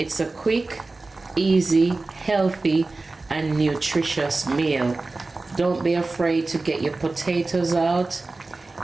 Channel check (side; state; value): left; quieter; 3.4 dB